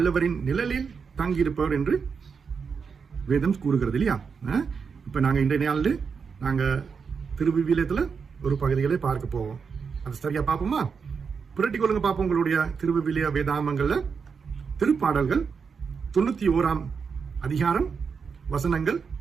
நிழலில் தங்கியிருப்பவர் என்று வேதம் கூறுகிறது இல்லையா? இப்ப நாங்க இன்றைய நாளில் நாங்க திருவிவிலியத்துல ஒரு பகுதிகளை பார்க்க போவோம். அது சரியா பார்ப்போமா? புரட்டி கொள்ளுங்க பார்ப்போம். உங்களுடைய திருவிவிலிய வேதாமங்கள்ல திருப்பாடல்கள் 91ஆம் அதிகாரம் வசனங்கள்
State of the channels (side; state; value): left; quieter; 5.8 dB